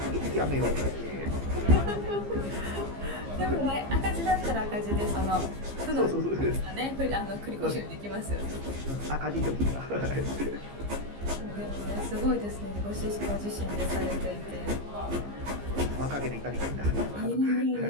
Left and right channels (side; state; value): left; late; 15 ms